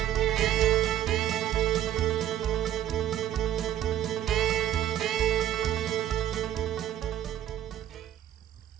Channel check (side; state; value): left; quieter; 11.7 dB